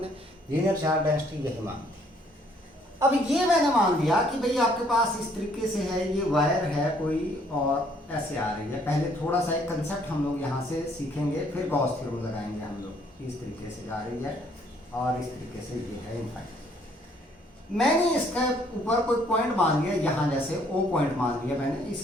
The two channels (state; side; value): normal; both; correlation 0.64